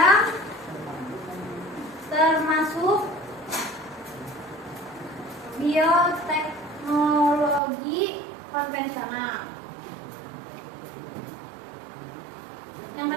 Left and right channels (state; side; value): drops out; left; at 7.6 s